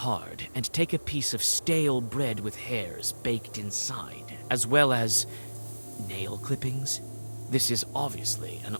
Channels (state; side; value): inverted; both; correlation -1.00